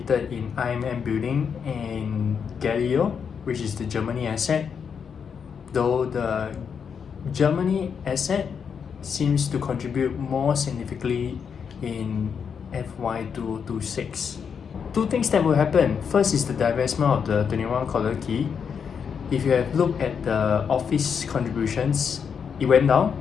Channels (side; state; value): right; quieter; 6.8 dB